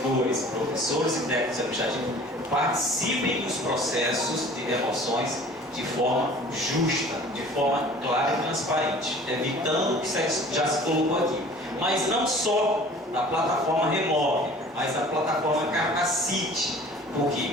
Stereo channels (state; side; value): normal; both; correlation 0.47